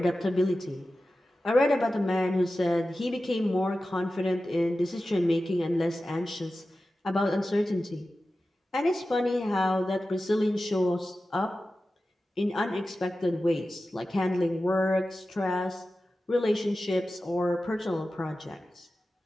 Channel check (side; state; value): both; normal; correlation 0.94